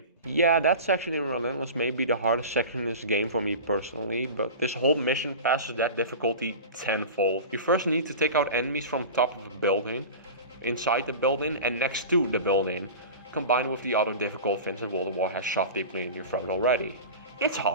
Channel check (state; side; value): inverted; both; correlation -0.32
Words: Yeah, that section in Relentless may be the hardest section in this game for me personally, but this whole mission passes that difficulty tenfold. You first need to take out enemies from top of a building, inside the building and next to the building, combined with the other difficult things that World War has shoved deeply in your throat already. It's